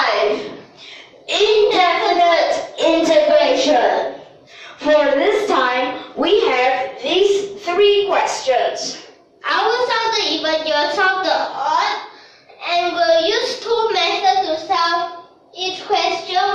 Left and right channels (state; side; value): identical; both; correlation 1.00